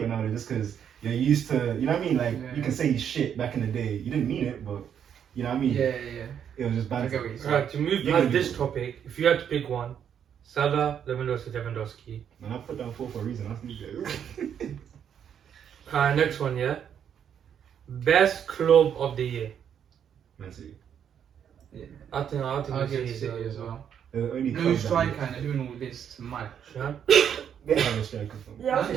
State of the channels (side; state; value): left; quieter; 8.6 dB